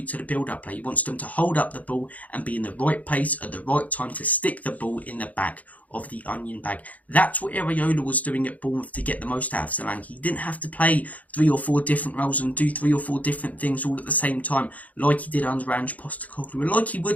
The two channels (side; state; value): right; late; 0.074 ms